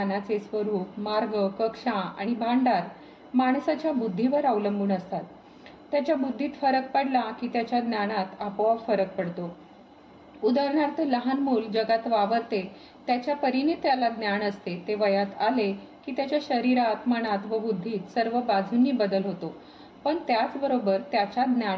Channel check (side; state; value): both; identical; correlation 1.00